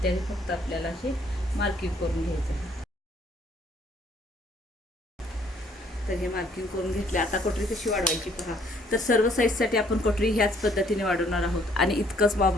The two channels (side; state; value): both; normal; correlation 0.64